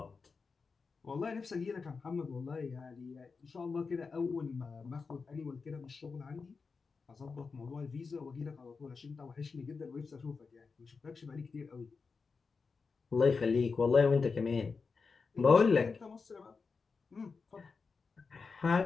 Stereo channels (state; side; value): quieter; right; 4.8 dB